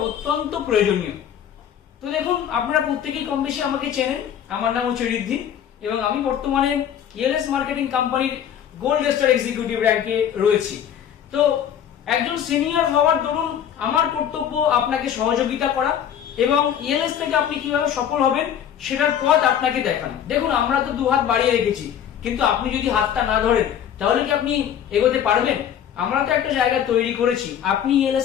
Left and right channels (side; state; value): right; quieter; 9.4 dB